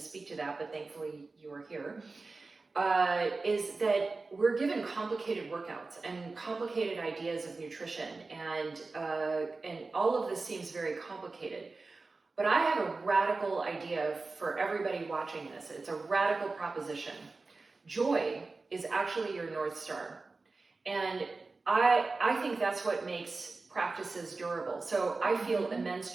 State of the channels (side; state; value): left; quieter; 3.7 dB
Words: speak to that, but thankfully you are here, is that we're given complicated workouts and complicated ideas of nutrition, and all of this seems very complicated. But I have a radical idea for everybody watching this. It's a radical proposition. Joy is actually your North Star. And I think that's what makes practices durable. So I feel immense